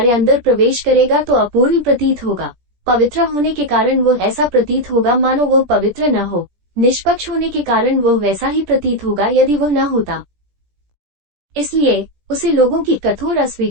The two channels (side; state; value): left; late; 17 ms